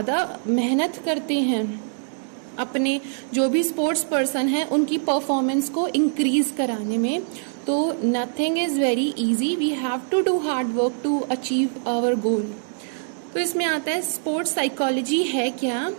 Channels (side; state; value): left; silent; digital silence